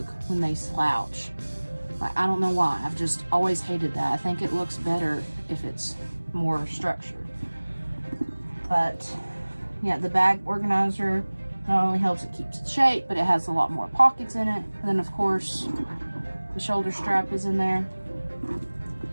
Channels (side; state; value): both; inverted; correlation -1.00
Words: when they slouch. Like, I don't know why. I've just always hated that. I think it looks better if it's more structured. But yeah, the bag organizer not only helps it keeps its shape, but it has a lot more pockets in it. And then of course, the shoulder strap is in there.